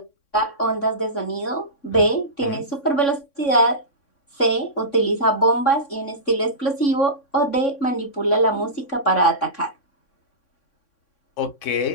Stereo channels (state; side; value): late; right; 3.6 ms